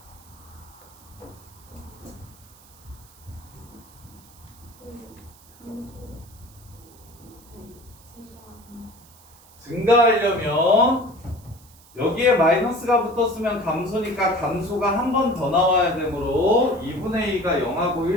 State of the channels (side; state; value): right; noise; hiss, 25 dB below the sound